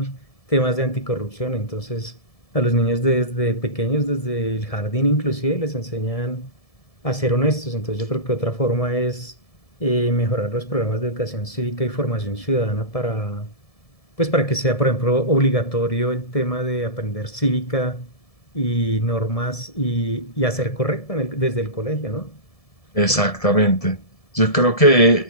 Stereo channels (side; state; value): right; late; 1.7 ms